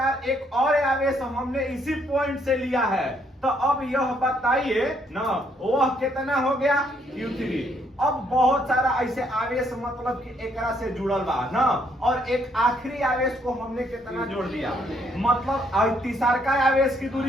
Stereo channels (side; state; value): both; normal; correlation 0.70